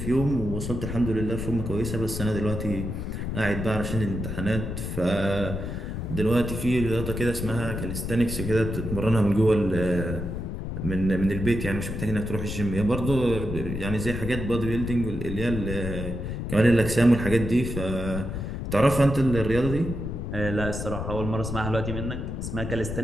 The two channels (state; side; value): noise; left; rumble, 5 dB below the sound